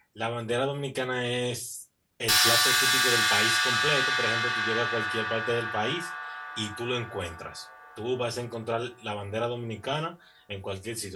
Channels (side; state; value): both; identical; correlation 1.00